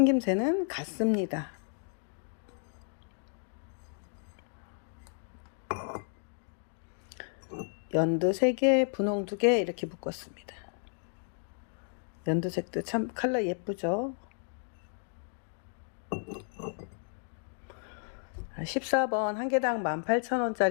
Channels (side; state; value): right; silent; 56 dB below the other